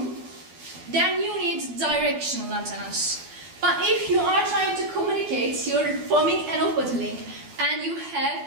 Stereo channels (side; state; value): left; late; 12 ms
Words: then you need directional antennas. But if you are trying to communicate, you're forming an off-body link, and you